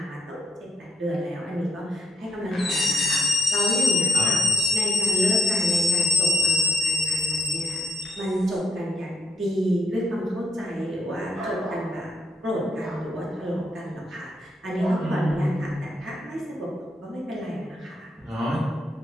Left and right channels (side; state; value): both; normal; correlation 0.73